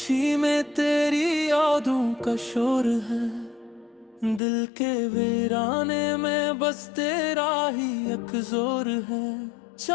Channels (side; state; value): right; drops out; at 4.4 s